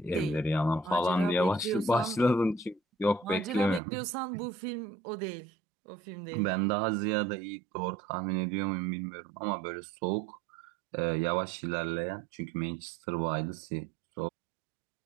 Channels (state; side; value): drops out; left; at 3.8 s